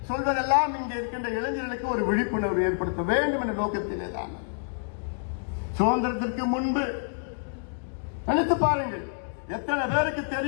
சொல்வதெல்லாம் இங்கே இருக்கின்ற இளைஞர்களுக்கு ஒரு விழிப்புணர்வு ஏற்படுத்த வேண்டும் என்ற நோக்கத்திலே தான். சுதந்திரத்திற்கு முன்பு நினைத்து பாருங்கள், எத்தனை பேருக்கு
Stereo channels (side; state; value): right; silent; digital silence